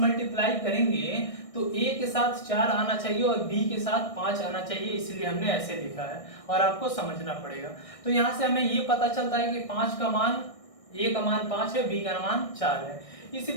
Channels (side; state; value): right; late; 1.6 ms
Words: करेंगे तो A के साथ 4 आना चाहिए और B के साथ 5 आना चाहिए, इसलिए हमने ऐसे लिखा है और आपको समझना पड़ेगा। तो यहाँ से हमें ये पता चलता है कि 5 का मान, A का मान 5 है, B का मान 4 है। इसी